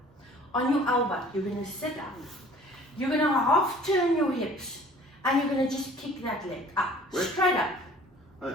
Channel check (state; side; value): normal; both; correlation 0.51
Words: on your elbow. You're going to sit up. You're going to half turn your hips. And you're going to just kick that leg up. Where? Straight up.